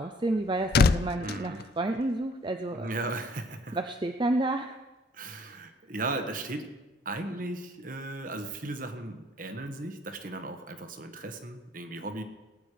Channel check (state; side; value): normal; both; correlation 0.59